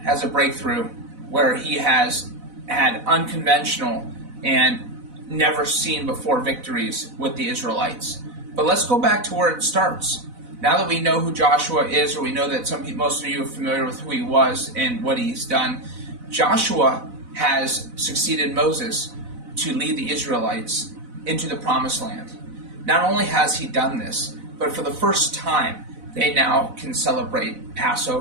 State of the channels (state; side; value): late; left; 4.0 ms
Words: has a breakthrough where he has had unconventional and never seen before victories with the Israelites. But let's go back to where it starts. Now that we know who Joshua is, or we know that most of you are familiar with who he was and what he's done, Joshua has succeeded Moses to lead the Israelites into the Promised Land. Not only has he done this, but for the first time, they now can celebrate